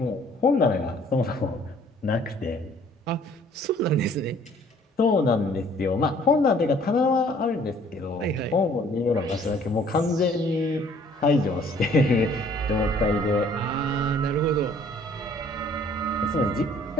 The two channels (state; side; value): normal; both; correlation 0.58